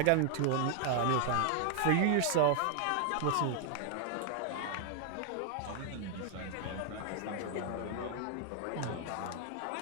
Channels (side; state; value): both; different; correlation 0.00